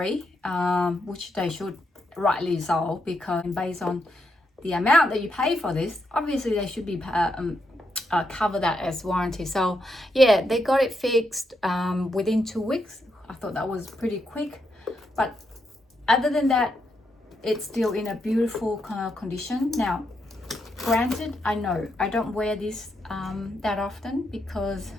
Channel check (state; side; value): normal; both; correlation 0.81